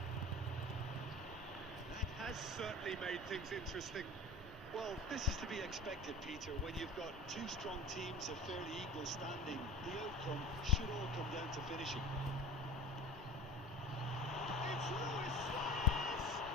That has certainly made things interesting. Well, this is to be expected, Peter. When you've got two strong teams of fairly equal standing, the outcome should all come down to finishing. It's Luis Suarez!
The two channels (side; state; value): both; normal; correlation 0.35